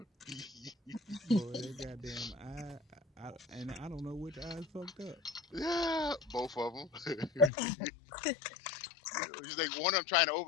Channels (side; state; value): right; drops out; at 7.5 s